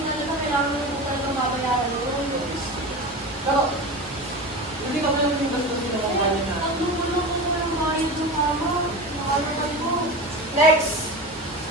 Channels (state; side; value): normal; both; correlation 0.27